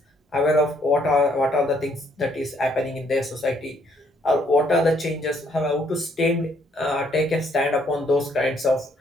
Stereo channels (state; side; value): normal; both; correlation 0.68